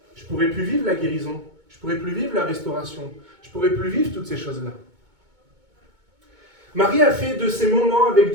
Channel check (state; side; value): late; left; 2.2 ms